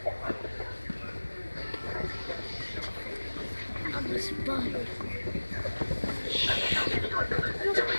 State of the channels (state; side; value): inverted; both; correlation -1.00